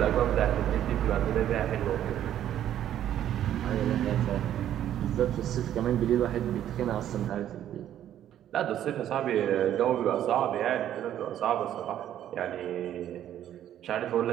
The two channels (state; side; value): quieter; left; 11.2 dB